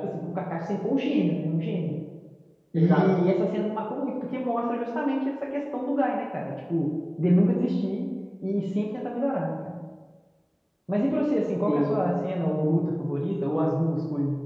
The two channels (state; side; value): identical; both; correlation 1.00